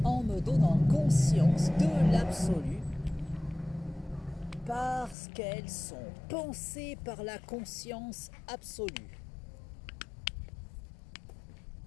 en me donnant conscience de l'absolu, parce qu'elles sont pensées par la conscience absolue.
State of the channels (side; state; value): right; drops out; at 5.2 s